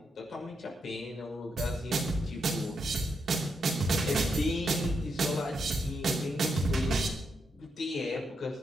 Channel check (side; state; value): both; normal; correlation 0.82